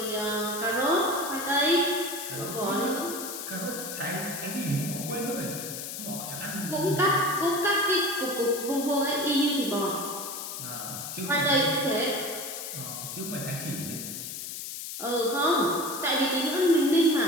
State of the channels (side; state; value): left; noise; hiss, 7 dB below the sound